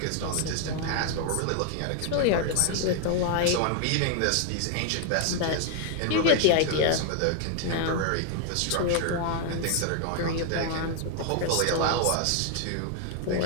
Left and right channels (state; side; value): different; both; correlation 0.00